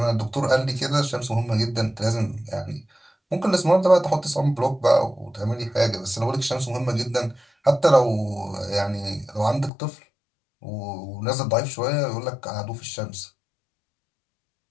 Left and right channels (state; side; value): drops out; right; at 9.7 s